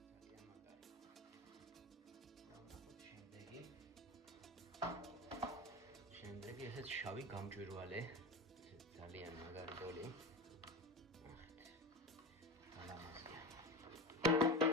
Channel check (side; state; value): both; normal; correlation 0.26